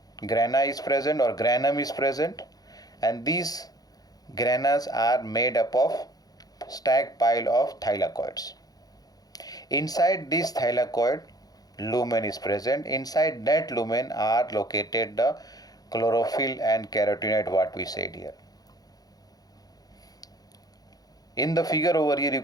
grana is present or granum is present, and these granas are made up of stacked pile of thylakoids. Inside this thylakoid, lumen is present. Inside that lumen are located the chlorophyll and carotenoid, what we said here. In the figure over here, you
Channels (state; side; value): late; right; 0.18 ms